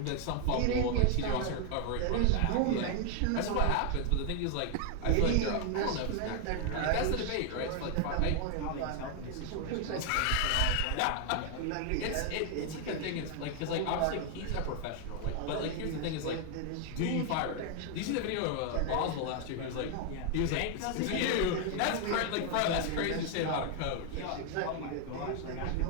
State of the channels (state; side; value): different; both; correlation 0.00